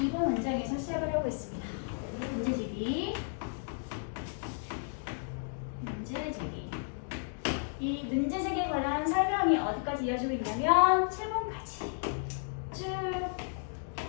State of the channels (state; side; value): silent; right; digital silence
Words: 문장에서 시작을 하고 있습니다. 문제 제기. 이 문제 제기에 관한 설명이 어디까지 이어지고 있냐면 7번까지 쭉